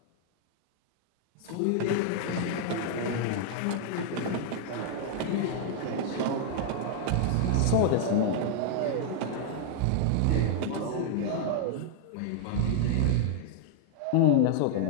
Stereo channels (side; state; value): both; different; correlation 0.00